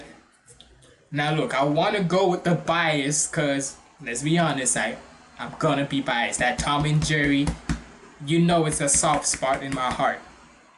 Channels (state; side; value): identical; both; correlation 1.00